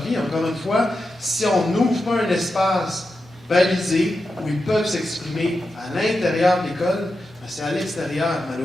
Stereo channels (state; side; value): normal; both; correlation 0.89